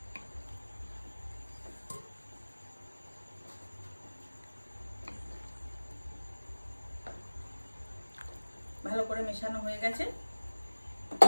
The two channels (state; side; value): inverted; both; correlation -1.00